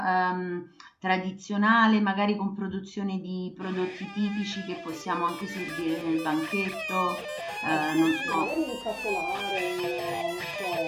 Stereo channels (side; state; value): both; identical; correlation 1.00